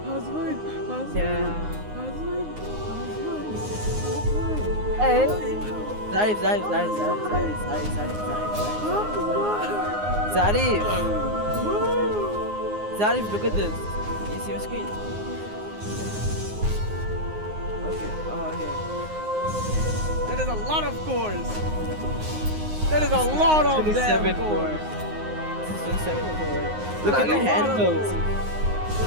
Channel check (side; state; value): left; late; 9.6 ms